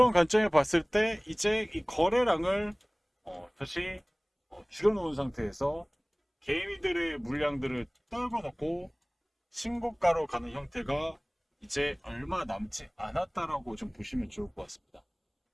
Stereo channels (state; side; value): identical; both; correlation 1.00